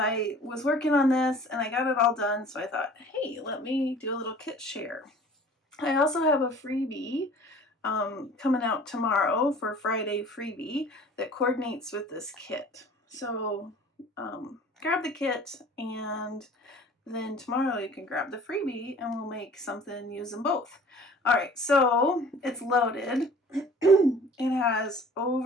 was working on this and I got it all done, so I thought, hey, let me do a little kit share. I also have a freebie coming out tomorrow for Friday freebie that coordinates with this kit. So grab the kit, and then tomorrow you can grab the freebie and we'll make something using both. All right, so it's loaded. It has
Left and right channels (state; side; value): normal; both; correlation 0.48